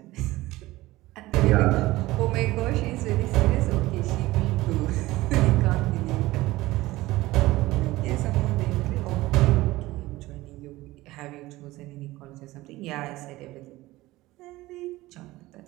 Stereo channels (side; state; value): left; quieter; 18.3 dB